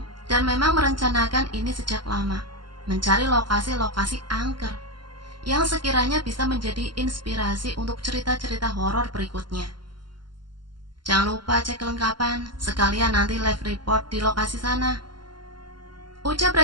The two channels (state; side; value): late; left; 0.71 ms